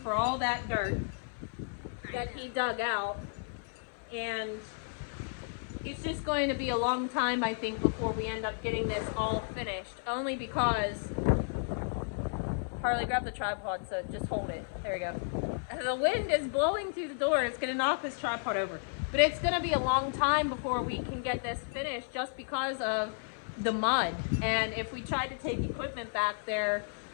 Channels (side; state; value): right; silent; 56 dB below the other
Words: all that dirt that he dug out, and it's just going to be a long time, I think, before we end up getting this all finished, only because Harley, grab the tripod, so just hold it. There we go. The wind is blowing through the door. It's going to knock this tripod over, but it's going to be a long time before we can get this finished just because of the mud. And if we try to take equipment back there,